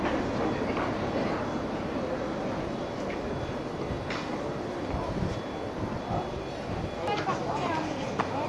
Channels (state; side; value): identical; both; correlation 1.00